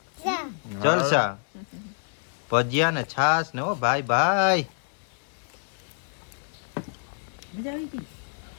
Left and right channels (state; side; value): silent; right; digital silence